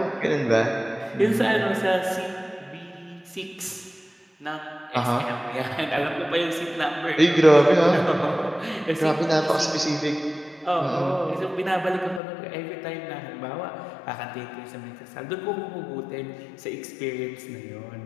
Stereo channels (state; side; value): drops out; right; at 12.2 s